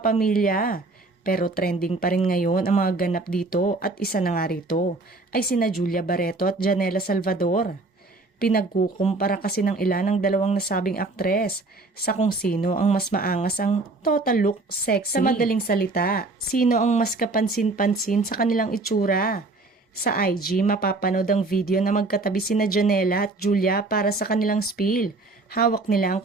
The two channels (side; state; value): left; quieter; 3.3 dB